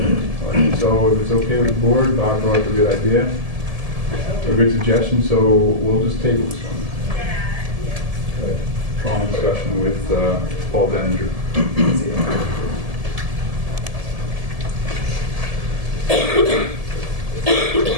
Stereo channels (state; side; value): late; left; 1.7 ms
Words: All right, so if it's okay with the board, Bob brought up a good idea, a good suggestion, so we'll just table this one. Long discussion with Paul Denninger.